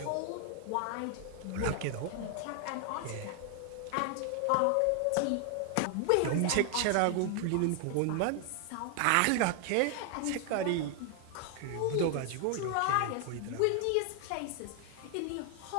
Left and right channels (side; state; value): both; different; correlation 0.00